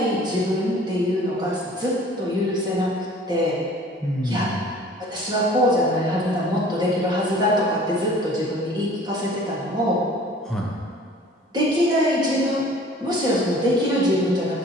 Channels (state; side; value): normal; both; correlation 0.49